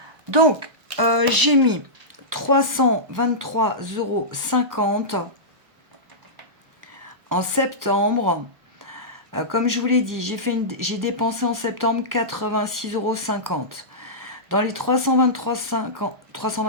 Donc, j'ai mis 323,50 € en septembre. Comme je vous l'ai dit, j'ai dépensé en septembre 86,50 €. Dans les 323,50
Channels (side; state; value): left; late; 1.0 ms